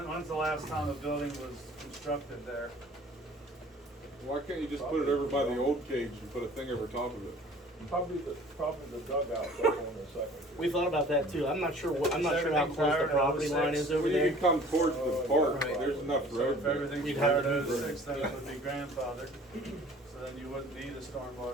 the last time a building was constructed there? Why can't you just put it over by the old cage and put a thing over top of it? Probably the Dugouts up on the second. We thought about that too. I'm not sure I'm not sure how Everything close the prior to property 06? line is over Well, you there. can come towards the park, Right. there's enough So road if there. everything's We'd prior have to to- 06, then it would be grandfathered. So then you wouldn't need a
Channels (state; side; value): normal; both; correlation 0.49